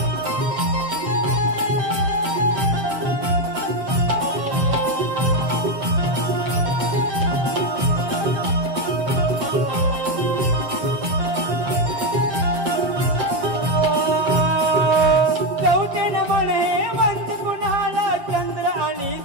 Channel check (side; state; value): left; late; 7.5 ms